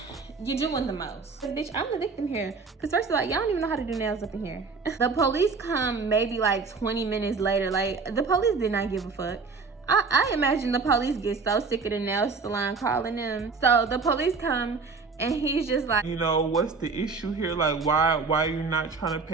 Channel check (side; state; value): left; quieter; 4.6 dB